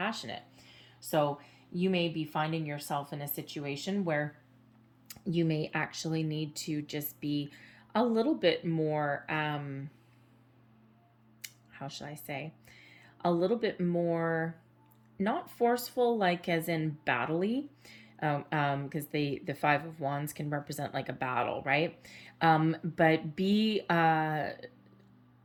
So you may be finding yourself in a situation where you may actually need to just be a little bit more, how should I say, a little bit more, not forceful, like as in battle-y, because the Five of Wands can represent like a battle, right? But be a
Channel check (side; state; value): both; identical; correlation 1.00